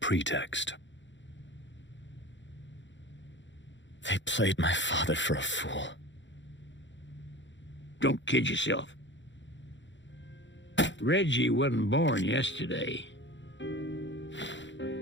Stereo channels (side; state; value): right; late; 0.54 ms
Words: They played my father for a fool. Don't kid yourself. Reggie wasn't born yesterday.